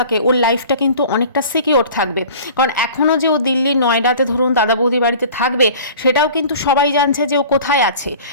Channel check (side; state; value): both; inverted; correlation -0.44